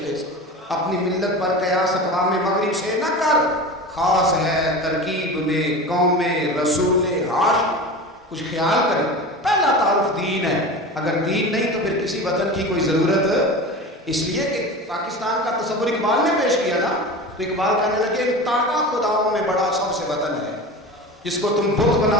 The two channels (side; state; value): both; normal; correlation 0.31